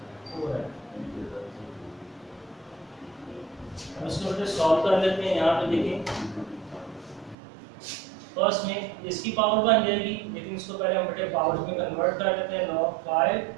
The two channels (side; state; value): left; drops out; at 7.4 s